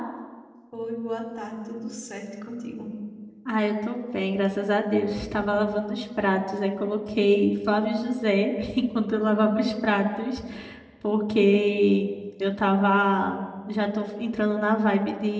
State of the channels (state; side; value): identical; both; correlation 1.00